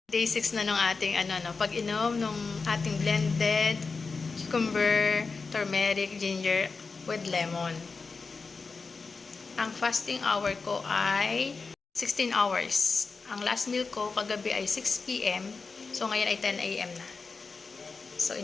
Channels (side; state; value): right; quieter; 4.5 dB